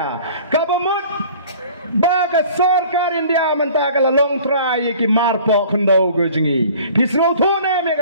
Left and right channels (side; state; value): both; inverted; correlation -0.48